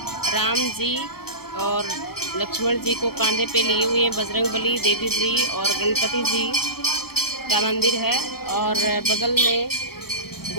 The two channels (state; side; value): late; right; 0.95 ms